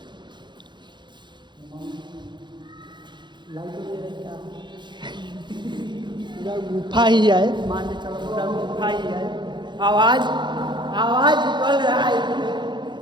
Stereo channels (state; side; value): late; left; 0.22 ms